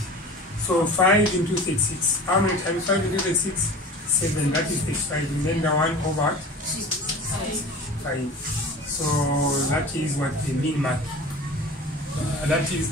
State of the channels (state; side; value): normal; both; correlation 0.38